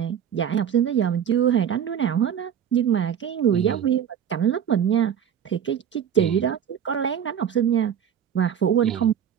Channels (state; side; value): quieter; left; 8.8 dB